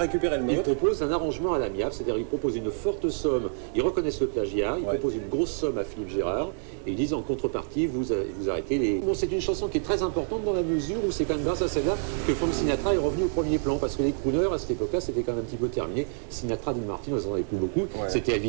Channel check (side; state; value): left; silent; digital silence